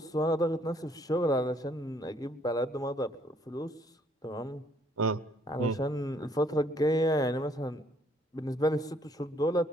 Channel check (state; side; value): normal; both; correlation 0.65